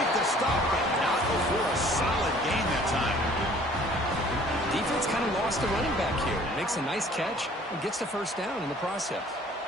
the stop, but not before a solid gain that time. Defense kind of lost the running back here. Makes a nice catch and gets the first down in the process.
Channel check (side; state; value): both; normal; correlation 0.54